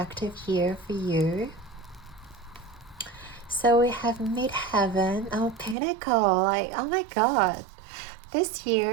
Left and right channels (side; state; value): left; drops out; at 5.8 s